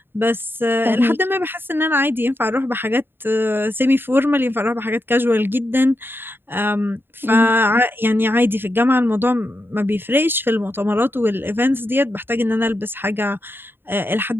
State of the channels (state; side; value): late; left; 0.10 ms